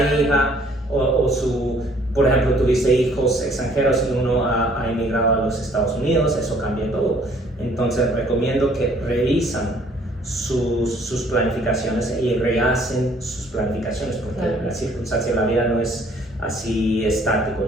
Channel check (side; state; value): both; normal; correlation 0.60